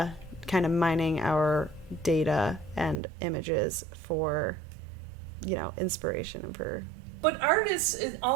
kind of mining our data and images for, inspiration and for. But artists, it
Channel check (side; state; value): left; drops out; at 3.0 s